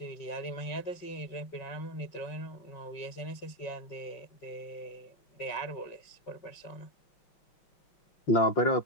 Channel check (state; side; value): late; right; 5.4 ms